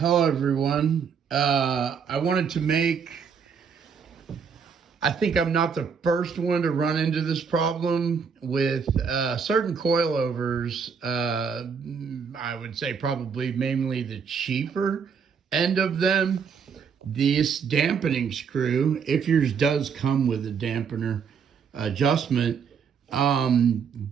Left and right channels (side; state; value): left; quieter; 6.4 dB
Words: everyone. I wanted to make, I think I'm not the first one to run into this problem with certain coilovers. I would say probably mainly the cheaper end of them. This dampening screw, if yours does come with a dampener adjustment,